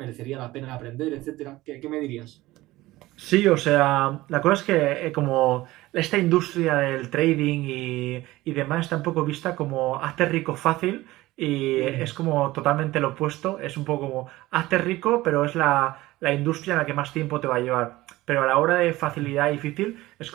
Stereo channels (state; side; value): quieter; left; 18.1 dB